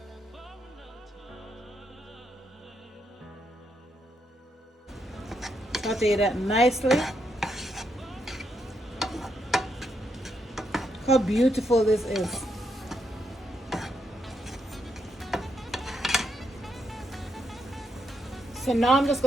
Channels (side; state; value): both; normal; correlation 0.79